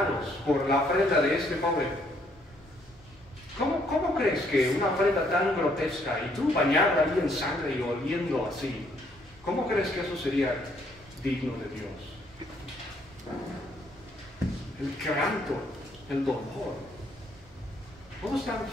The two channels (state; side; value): normal; both; correlation 0.68